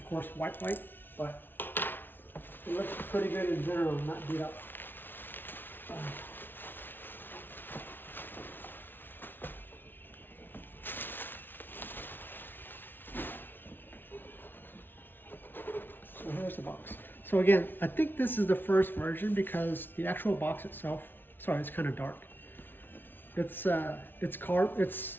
course, white, but it looks pretty good in general, not beat up. So here's the box. So again, I think this is the first version because the actual box itself Sorry, it's kind of dark. It's a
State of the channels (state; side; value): late; right; 0.098 ms